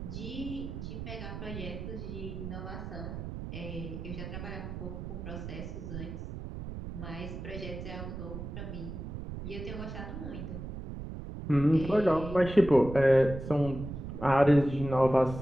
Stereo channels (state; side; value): noise; right; rumble, 8 dB below the sound